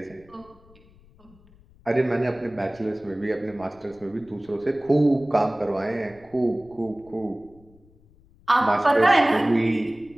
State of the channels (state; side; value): noise; left; rumble, 27 dB below the sound